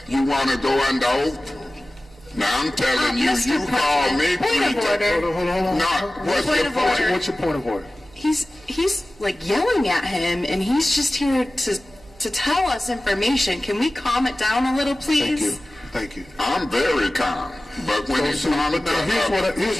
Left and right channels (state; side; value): noise; right; hum, 27 dB below the sound